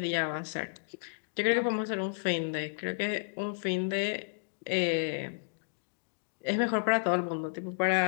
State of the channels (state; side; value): silent; right; digital silence